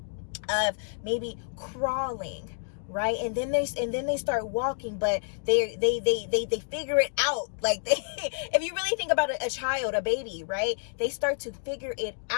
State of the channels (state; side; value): silent; right; digital silence